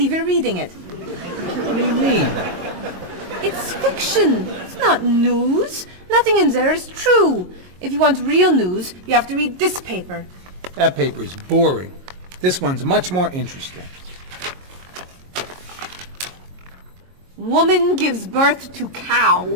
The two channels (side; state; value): left; late; 22 ms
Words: you're reading it. What do you mean? It's fiction. It's not news. Nothing in there is true. If you want real news, you have to read this paper. That paper is boring. This one's much more interesting. Woman gives birth to cow.